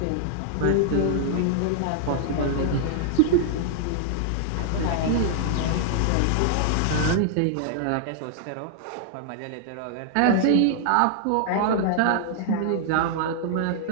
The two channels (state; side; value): different; both; correlation -0.01